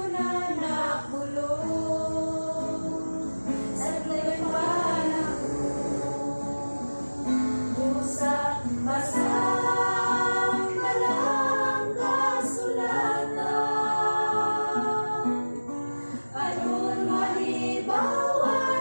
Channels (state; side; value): inverted; both; correlation -1.00